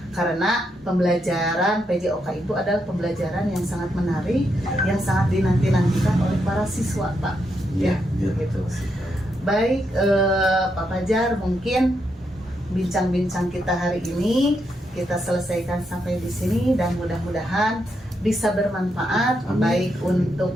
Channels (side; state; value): both; normal; correlation 0.81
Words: Karena pembelajaran PJOK itu adalah pembelajaran yang sangat menarik, yang sangat dinanti-nantikan oleh para siswa Pak. Iya, gitu. Baik, Pak Fajar, mungkin bincang-bincang kita hari ini kita selesaikan sampai di sini dan mudah-mudahan bisa bermanfaat baik untuk